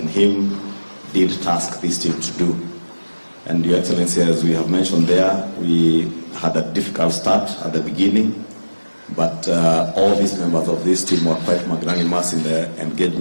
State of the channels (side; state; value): both; inverted; correlation -1.00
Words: him did task this team to do. And Your Excellency, as we have mentioned there, we had a difficult start at the beginning, but all these members of this team were quite magnanimous in the